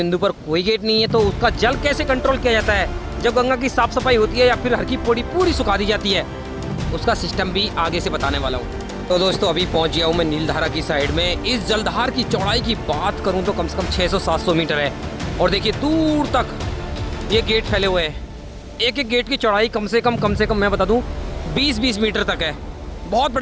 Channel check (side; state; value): both; identical; correlation 1.00